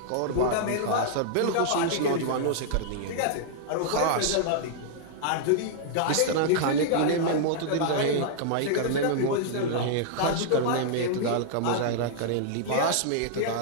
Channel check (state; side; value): different; both; correlation -0.01